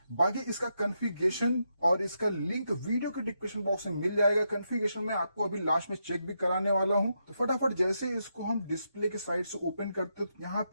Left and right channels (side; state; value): both; inverted; correlation -0.82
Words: बाकी इसका कॉन्फ़िगरेशन और इसका लिंक वीडियो के डिस्क्रिप्शन बॉक्स में मिल जाएगा। कॉन्फ़िगरेशन में आपको अभी लास्ट में चेक भी कराने वाला हूं। तो फटाफट जैसे इसको हम डिस्प्ले के साइड से ओपन करते हैं तो यहाँ